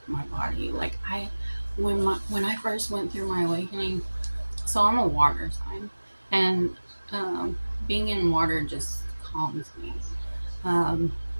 my body. Like, when I first went through my awakening, so I'm a water sign, and being in water just calms me. Um,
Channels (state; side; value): inverted; both; correlation -1.00